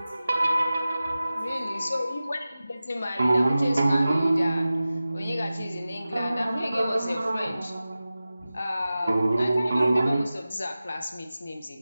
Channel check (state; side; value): inverted; both; correlation -0.96